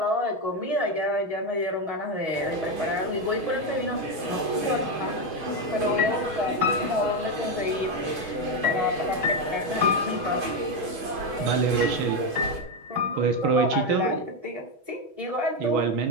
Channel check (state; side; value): late; left; 6.3 ms